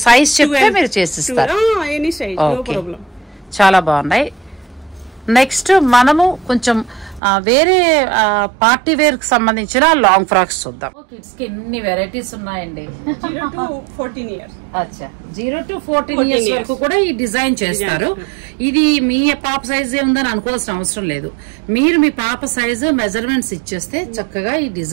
సైజ్ చెప్తే మీరు చేసిస్తారు. Any size, no Okay. problem. చాలా బాగున్నాయి. నెక్స్ట్ మనము కొంచెం వేరే పార్టీ వేర్ కి సంబంధించిన లాంగ్ ఫ్రాక్స్ చూద్దాం. కిడ్స్ కి ఎన్ని వెరైటీస్ ఉన్నాయండి. 0 to 14 years. అచ్చా, 0 to 14 ఇయర్స్ వరకు కూడా ఈ డిజైన్ చేస్తారు. ఇది మీ పాప సైజే ఉందని అనుకోవాల్సిన అవసరం లేదు. మీరు మీ పాప సైజు మెజర్మెంట్స్ ఇచ్చేస్తే చక్కగా ఈ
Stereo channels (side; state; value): left; drops out; at 7.2 s